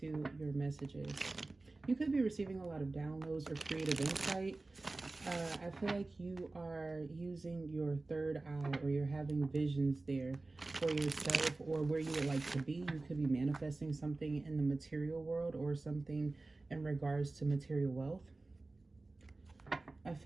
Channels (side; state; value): left; quieter; 3.2 dB